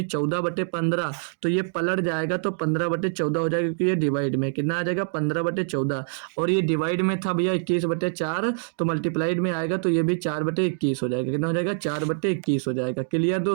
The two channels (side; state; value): left; silent; digital silence